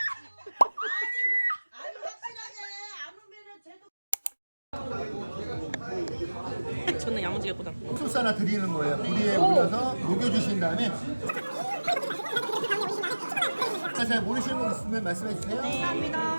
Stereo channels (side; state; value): both; inverted; correlation -1.00